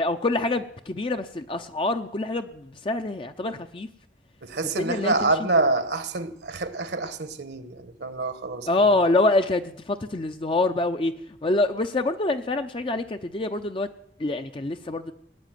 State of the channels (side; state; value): both; normal; correlation 0.23